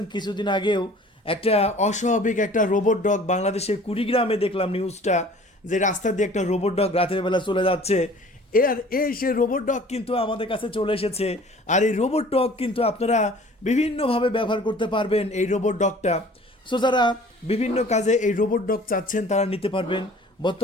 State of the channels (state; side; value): normal; both; correlation 0.49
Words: কিছুদিন আগেও একটা অস্বাভাবিক একটা রোবট ডগ বাংলাদেশের কুড়িগ্রামে দেখলাম নিউজটা, যে রাস্তা দিয়ে একটা রোবট ডগ রাতের বেলা চলে যাচ্ছে। সে রোবট ডগ কিন্তু আমাদের কাছে চলে এসেছে। আর এই রোবট ডগ কিন্তু আপনারা বিভিন্নভাবে ব্যবহার করতে পারবেন এই রোবট ডগটা। সো যারা বিভিন্ন কাজে এই রোবট ডগ চাচ্ছেন তারা নিতে পারবেন।